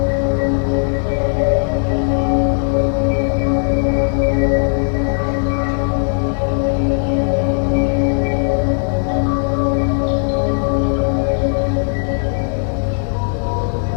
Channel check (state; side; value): silent; right; 57 dB below the other